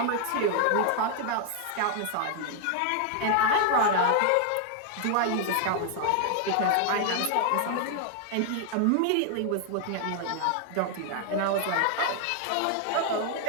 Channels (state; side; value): different; both; correlation 0.00